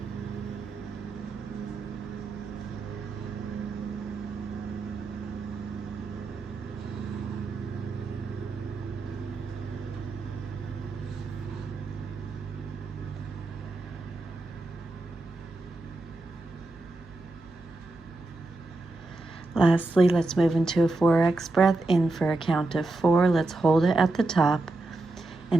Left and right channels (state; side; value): quieter; left; 3.1 dB